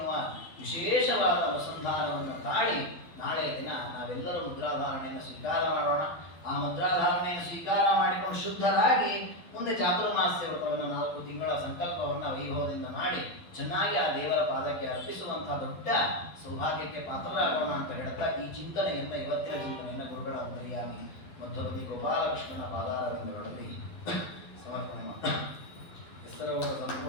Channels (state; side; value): late; right; 12 ms